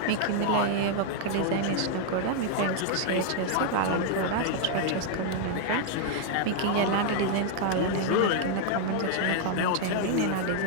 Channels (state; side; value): different; both; correlation 0.00